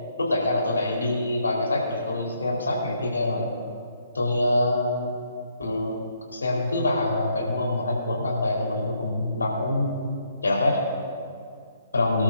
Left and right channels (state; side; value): inverted; both; correlation -0.73